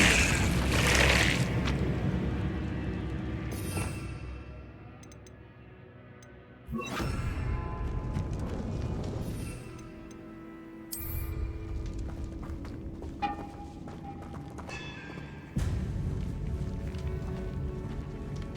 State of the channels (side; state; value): both; identical; correlation 1.00